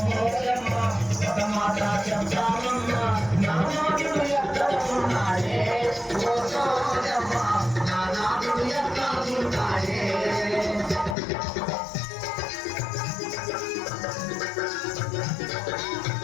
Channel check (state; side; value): drops out; right; at 11.2 s